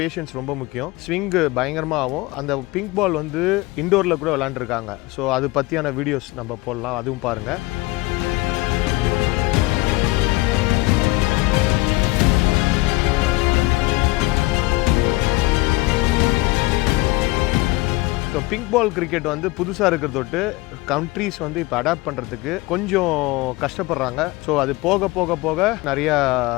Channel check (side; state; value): right; quieter; 21.4 dB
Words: ரொம்ப முக்கியம். ஸ்விங் பயங்கரமாக ஆகும். அந்த பிங்க் பால் வந்து இண்டோரில் கூட விளையாண்டுருக்காங்க. ஸோ அது பற்றியான வீடியோஸ் நம்ம போடலாம், அதுவும் பாருங்கள். ஸோ பிங்க் பால் கிரிக்கெட் வந்து புதுசாக இருக்கிறதொட்டு கண்ட்ரீஸ் வந்து இப்போ அடாப்ட் பண்ணுறதுக்கு கொஞ்சம் கஷ்டப்படுறாங்க. ஸோ அது போக போக போக நிறையா